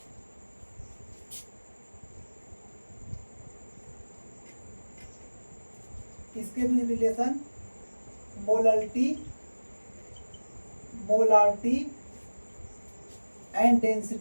किसके बीच relation, molality, molarity and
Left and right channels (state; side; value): inverted; both; correlation -1.00